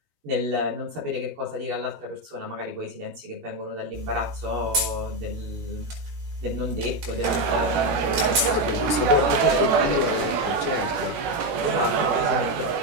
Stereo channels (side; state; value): left; late; 11 ms